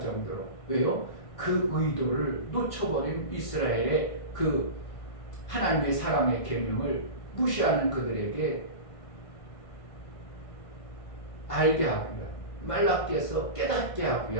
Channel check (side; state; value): right; late; 1.6 ms